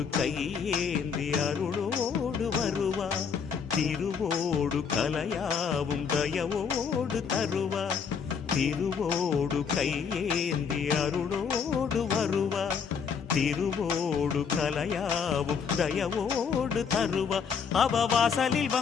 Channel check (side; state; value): right; quieter; 6.4 dB